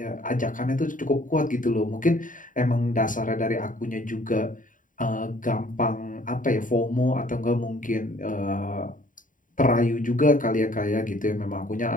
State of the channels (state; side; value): late; right; 0.38 ms